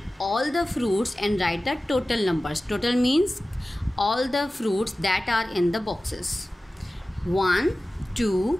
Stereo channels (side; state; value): both; normal; correlation 0.96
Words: all the fruits and write the total numbers. Total means all the fruits that are in the boxes. 1 2